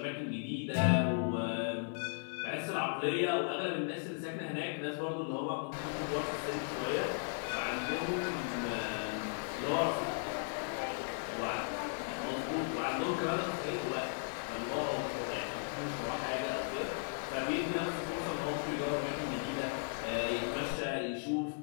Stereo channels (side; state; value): right; silent; digital silence